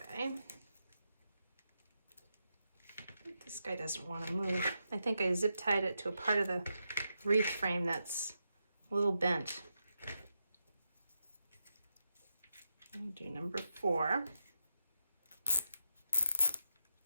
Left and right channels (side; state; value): both; inverted; correlation -0.86